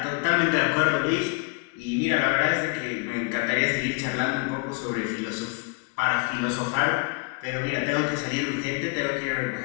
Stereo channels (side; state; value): right; quieter; 31.1 dB